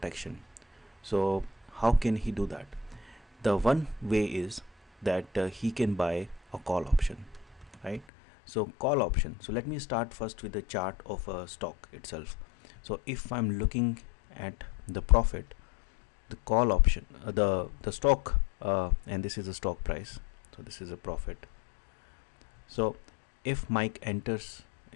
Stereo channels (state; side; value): drops out; right; at 8.1 s